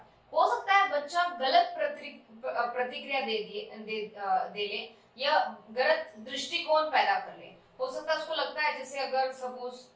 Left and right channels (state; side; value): identical; both; correlation 1.00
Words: हो सकता है बच्चा गलत प्रतिक्रिया दे ले या गलत दृष्टिकोण पैदा कर ले। हो सकता है उसको लगता है, जैसे अगर सपोज